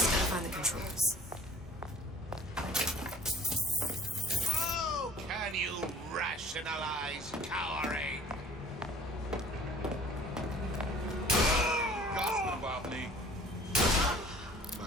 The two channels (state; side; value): normal; both; correlation 0.50